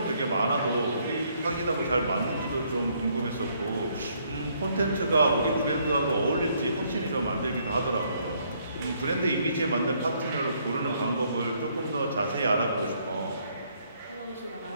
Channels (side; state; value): both; inverted; correlation -0.69